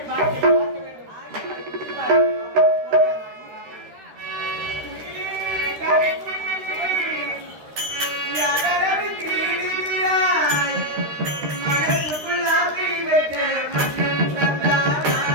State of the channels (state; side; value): late; left; 13 ms